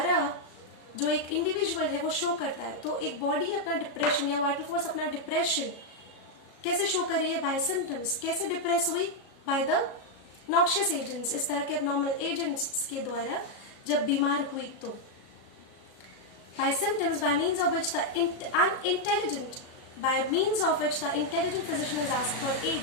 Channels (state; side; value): late; right; 36 ms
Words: जो एक इंडिविजुअल है वो शो करता है। तो एक बॉडी अपना डिप्रेशन या वाइटल फोर्स अपना डिप्रेशन कैसे शो कर रही है? By symptoms. कैसे डिप्रेस हुई? बाय द नॉक्शियस एजेंट्स, इस तरह के एबनॉर्मल एजेंट्स के द्वारा जब बीमार हुई तो। By symptoms by means of which the intelligent physician is asked for aid,